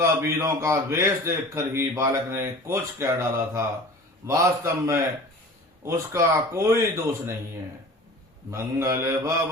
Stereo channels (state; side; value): normal; both; correlation 0.40